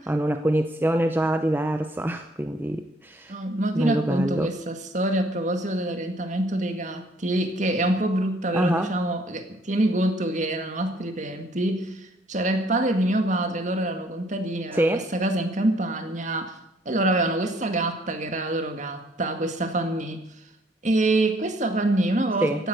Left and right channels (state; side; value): normal; both; correlation 0.64